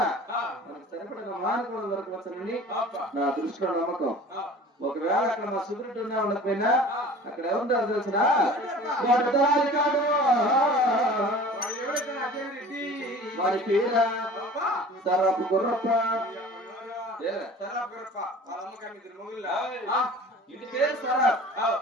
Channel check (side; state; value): both; normal; correlation 0.43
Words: మనకు సరిపడిన మానవుడు దొరకవచ్చునని నా దృష్టిలో నమ్మకం. ఒకవేళ అక్కడ మా సుబ్రెడ్డి ఉన్నా ఉండకపోయినా అక్కడ ఏముంటారు తెలిసిన వాడి పేర సరపు గుర్రప్ప ఇంటి పేరు సరాబ్